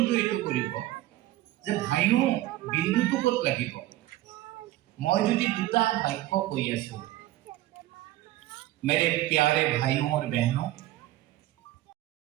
এইটো কৰিব যে ভাইও বিন্দুটো ক'ত লাগিব মই যদি দুটা বাক্য কৈ আছো मेरे प्यारे भाइयों और बहनों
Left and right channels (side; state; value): left; quieter; 15.7 dB